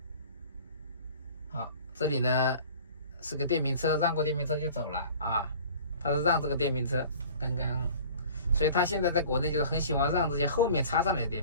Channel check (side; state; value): both; inverted; correlation -0.45